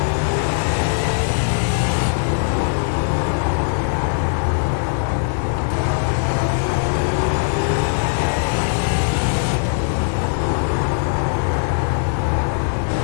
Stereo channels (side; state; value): right; silent; 66 dB below the other